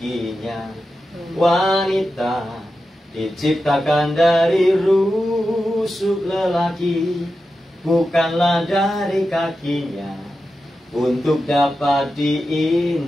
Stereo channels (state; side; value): normal; both; correlation 0.91